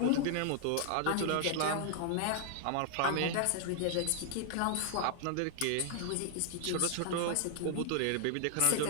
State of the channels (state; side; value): different; both; correlation 0.00